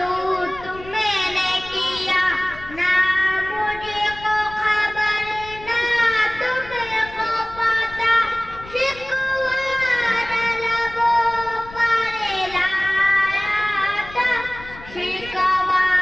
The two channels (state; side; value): noise; left; rumble, 18 dB below the sound